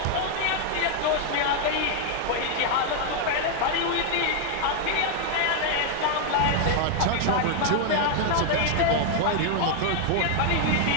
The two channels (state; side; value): different; both; correlation 0.00